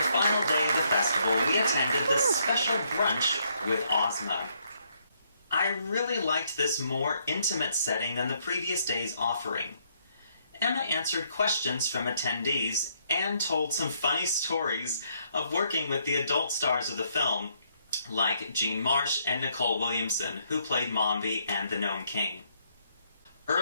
final day of the festival, we attended the special brunch with Ozma. I really liked this more intimate setting than the previous day's offering. Emma answered questions from attendees and told some funny stories of working with the adult stars of the film, like Jean Marsh and Nicole Williamson, who played Mombi and the Gnome King.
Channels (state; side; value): inverted; both; correlation -0.72